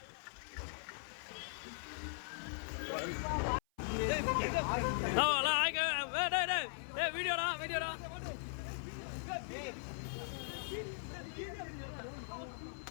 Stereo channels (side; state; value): right; silent; 51 dB below the other